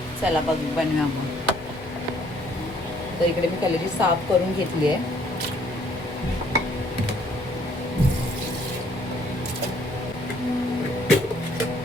चला बनवूया मग. तर इकडे मी कलेजी साफ करून घेतली आहे.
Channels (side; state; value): both; normal; correlation 0.63